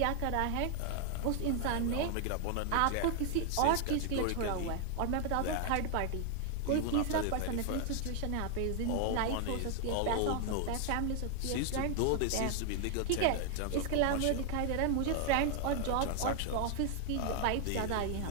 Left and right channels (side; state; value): both; different; correlation 0.00